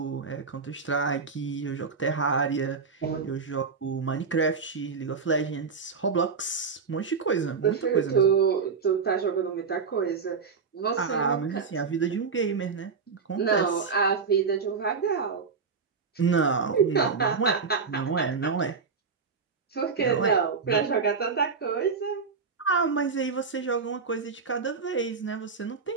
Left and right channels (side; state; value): left; quieter; 5.3 dB